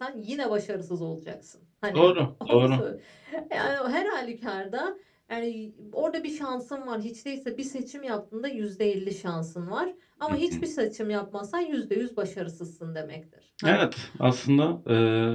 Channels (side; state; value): both; identical; correlation 1.00